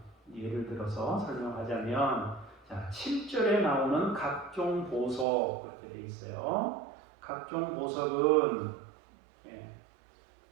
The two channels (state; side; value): drops out; left; at 5.2 s